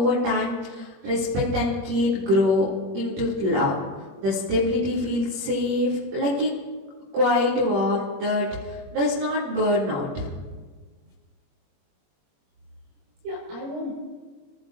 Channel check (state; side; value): late; left; 21 ms